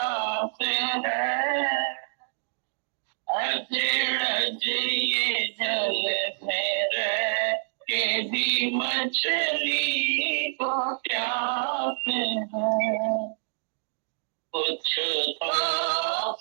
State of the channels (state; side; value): silent; left; digital silence